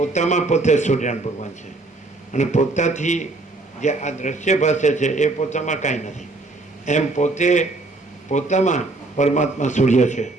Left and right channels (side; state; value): left; quieter; 3.2 dB